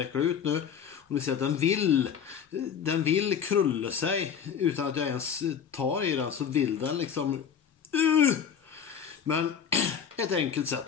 ut nu. Och ni ser att den vill krulla sig utan att jag ens tar i den, så vill den liksom men ett enkelt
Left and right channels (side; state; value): right; quieter; 7.7 dB